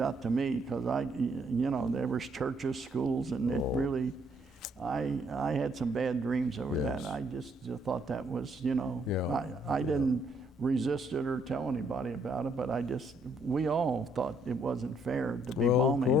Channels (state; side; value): normal; both; correlation 0.70